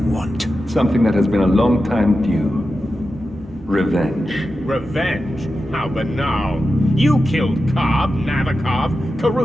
want? Something that has been a long time due. Revenge. Revenge? How banal. You killed Cobb, Navikov,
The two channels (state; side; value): normal; both; correlation 0.91